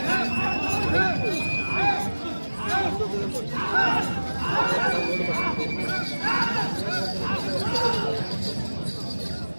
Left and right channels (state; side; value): inverted; both; correlation -1.00